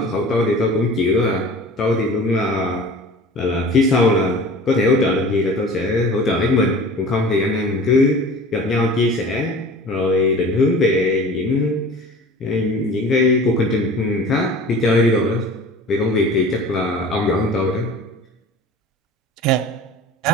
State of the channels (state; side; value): normal; both; correlation 0.41